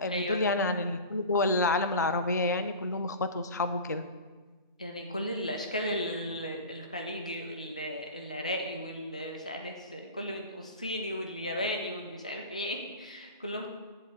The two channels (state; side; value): inverted; both; correlation -0.33